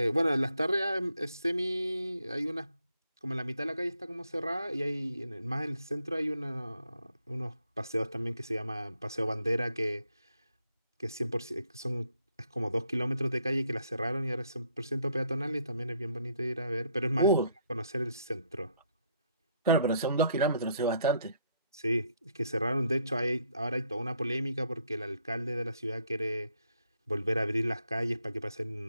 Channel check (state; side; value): inverted; both; correlation -0.70